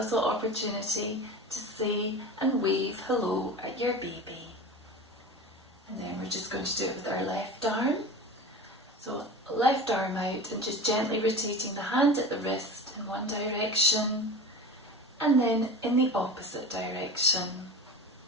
opportunity to say and wave hello at your baby. And then we're just going to do it with our left arm. So left arm out and just gently rotating the hand at the wrist in one direction and then in the opposite direction.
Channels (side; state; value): both; normal; correlation 0.32